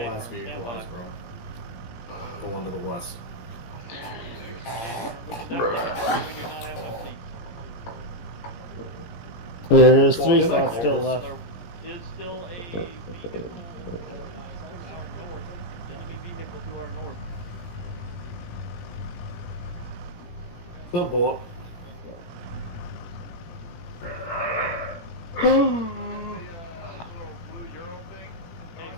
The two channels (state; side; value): late; right; 17 ms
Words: vehicle was wrong. The one to the west. There's 3 spots still left. Is still a vehicle to our north. Still bullet.